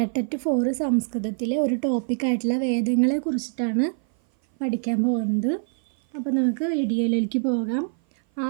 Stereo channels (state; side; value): silent; left; 57 dB below the other